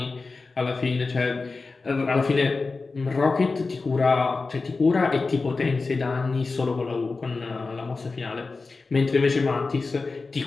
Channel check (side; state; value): right; quieter; 4.0 dB